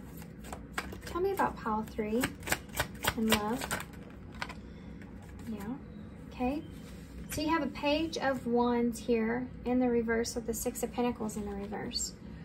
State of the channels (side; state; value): both; identical; correlation 1.00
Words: Tell me about pile 3 and love. Yeah, okay. So you have a Page of Wands here in the reverse with the 6 of Pentacles in the reverse.